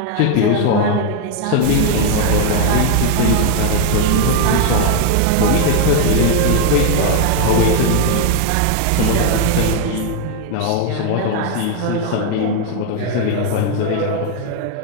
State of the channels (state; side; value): different; both; correlation 0.01